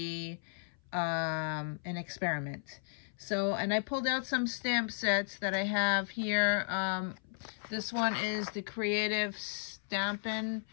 an experiment. So, and I pulled out some stamp sets that I have here. This one is the Creative Stampin'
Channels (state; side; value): silent; right; 55 dB below the other